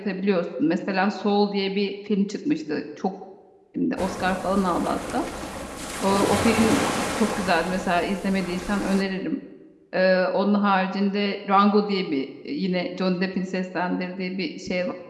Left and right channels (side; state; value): both; identical; correlation 1.00